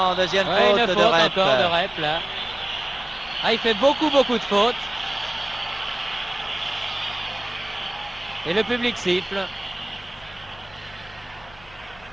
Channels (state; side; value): noise; left; hum, 24 dB below the sound